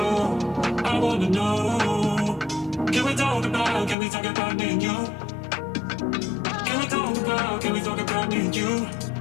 I wanna know. Can we talk about me and you? Can we talk about me and you?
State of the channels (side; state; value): right; drops out; at 4.0 s